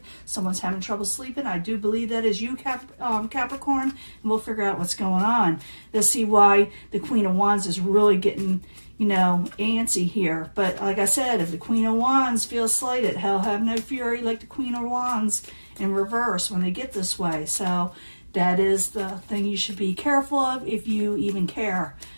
Someone's having trouble sleeping. I do believe that is you, Capricorn, and we'll figure out what's going on. Let's see why the Queen of Wands is really getting, antsy here. But like I said, if the Queen of Wands feels slighted, hell have no fury like the Queen of Wands in reverse when they get this way. So that is the thing you should be careful of if you even care.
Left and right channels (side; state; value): both; inverted; correlation -1.00